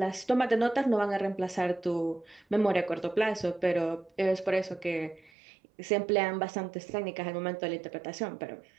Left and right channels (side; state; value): left; drops out; at 5.3 s